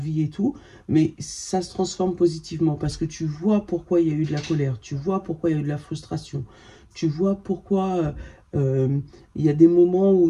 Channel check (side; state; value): both; identical; correlation 1.00